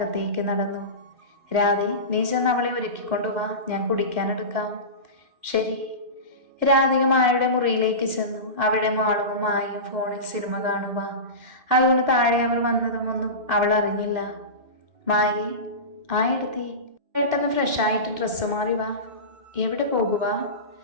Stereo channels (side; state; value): left; late; 2.3 ms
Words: നടന്നു. രാധേ, നീ ചെന്ന് അവളെ ഒരുക്കിക്കൊണ്ടുവാ, ഞാൻ കുടിക്കാനെടുക്കാം. ശരി. രാധിക മായയുടെ മുറിയിലേക്ക് ചെന്നു. അവിടെ മാളുവും മായയും ഫോണിൽ സിനിമ കാണുക. അതുകൊണ്ട് താഴെ അവർ വന്നതുമൊന്നും അവൾ അറിഞ്ഞില്ല. മായേ, എടുത്തി പെട്ടെന്ന് ഫ്രഷായിട്ട് ഡ്രസ്സ് മാറി വാ. എവിടെ പോകുക?